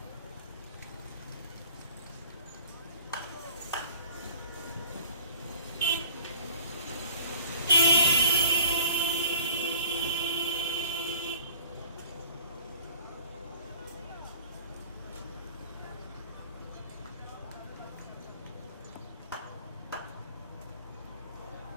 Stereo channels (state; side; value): inverted; both; correlation -0.47